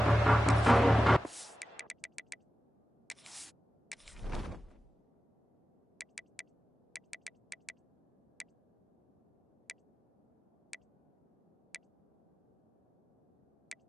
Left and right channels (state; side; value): normal; both; correlation 0.93